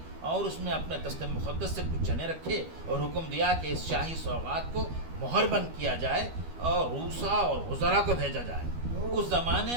اور اس میں اپنے دست مقدس سے کچھ چنے رکھے اور حکم دیا کہ اس شاہی سوغات کو مہر بند کیا جائے اور روسا اور وزراء کو بھیجا جائے. اس زمانے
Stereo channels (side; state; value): left; late; 12 ms